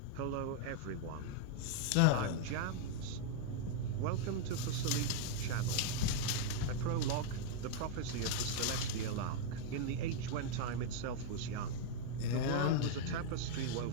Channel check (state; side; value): different; both; correlation 0.00